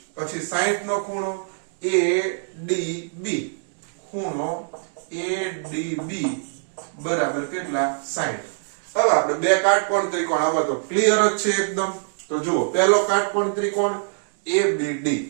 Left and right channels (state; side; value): silent; left; digital silence